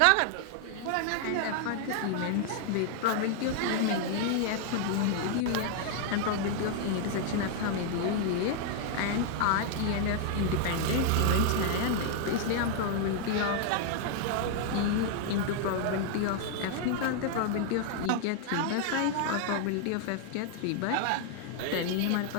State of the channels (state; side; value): different; both; correlation 0.00